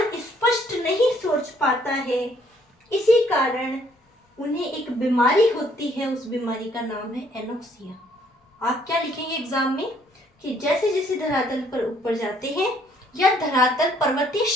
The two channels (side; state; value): both; normal; correlation 0.65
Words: स्पष्ट नहीं सोच पाता है। इसी कारण उन्हें एक बीमारी होती है, उस बीमारी का नाम है एनोक्सिया। आप क्या लिखेंगे एग्जाम में कि जैसे जैसे धरातल पर ऊपर जाते हैं या धरातल पर्वतीय